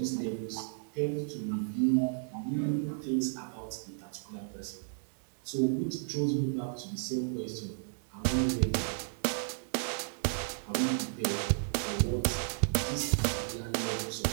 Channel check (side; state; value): left; silent; digital silence